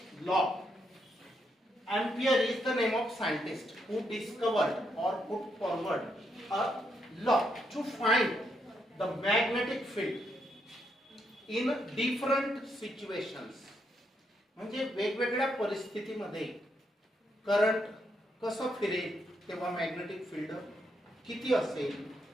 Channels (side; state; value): both; normal; correlation 0.78